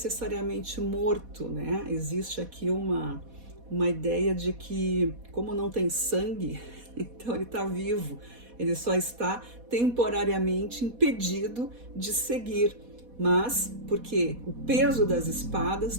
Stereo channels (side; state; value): left; late; 4.1 ms